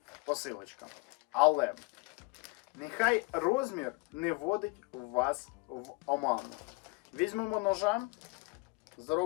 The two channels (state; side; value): quieter; right; 27.6 dB